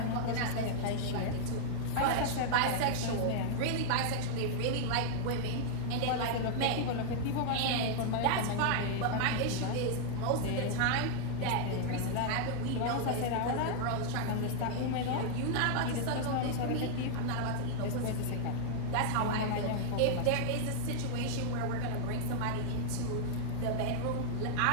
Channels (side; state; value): both; different; correlation -0.01